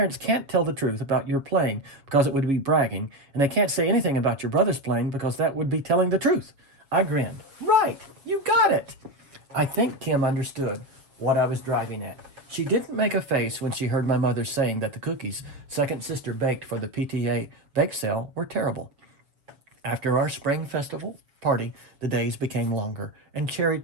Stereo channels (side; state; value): left; late; 7.2 ms